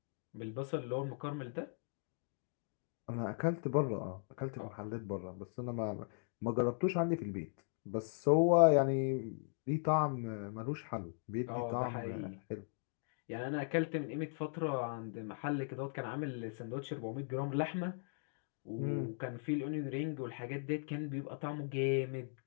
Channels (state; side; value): silent; right; digital silence